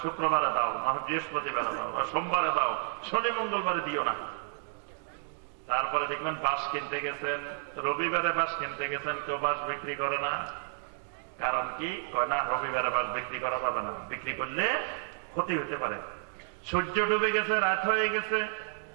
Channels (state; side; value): silent; left; digital silence